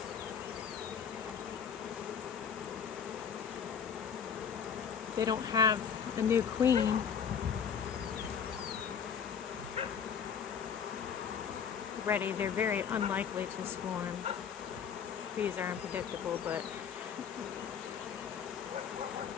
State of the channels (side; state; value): right; quieter; 7.3 dB